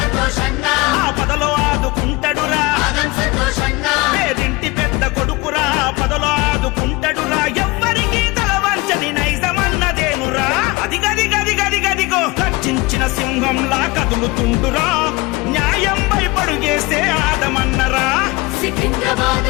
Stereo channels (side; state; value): right; quieter; 23.3 dB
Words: పదలో ఆదుకుంటాడురా పేదింటి పెద్ద కొడుకురా పదలో ఆదుకుంటాడురా ఎవ్వరికి తలవంచని నైజమన్నదేనురా అది గది గది గది గదిగో గర్జించిన సింహంలా కదులుతుండురా న్యాయం భయపడుగేసే ఆదమన్నరా